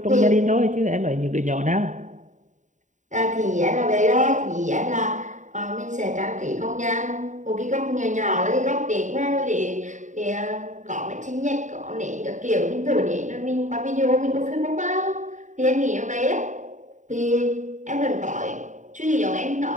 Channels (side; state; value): left; late; 0.36 ms